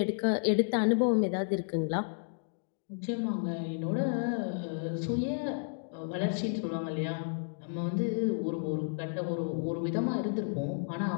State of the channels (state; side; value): silent; right; digital silence